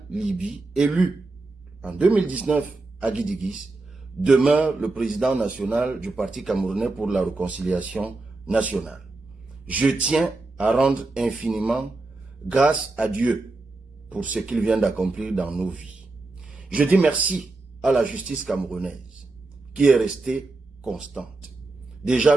Libye, élu en 2019 à Guidigis, demeure le président national du Parti camerounais pour la réconciliation nationale. Je tiens à rendre infiniment grâce à Dieu pour ce qu'il vient d'accomplir dans nos vies. Je dis merci à la justice camerounaise qui est restée constante. Déjà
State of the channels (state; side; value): quieter; left; 3.3 dB